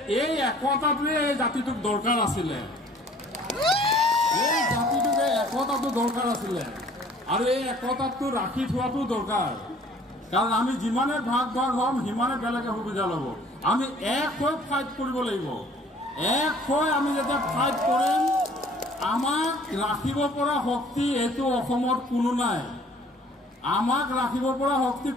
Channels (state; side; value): normal; both; correlation 0.54